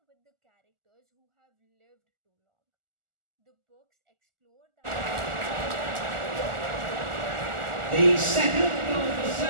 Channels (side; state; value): left; late; 1.4 ms